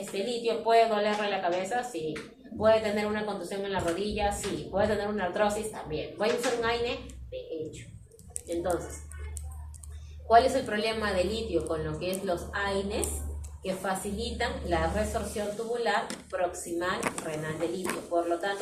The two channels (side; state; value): both; identical; correlation 1.00